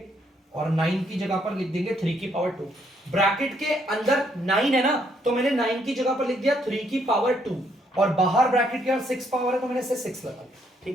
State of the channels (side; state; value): both; normal; correlation 0.71